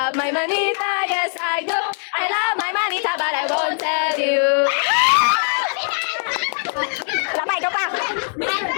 my manita, yes I do. I love my manita, but I won't tell you. Lamay ka pa.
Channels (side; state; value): right; silent; 64 dB below the other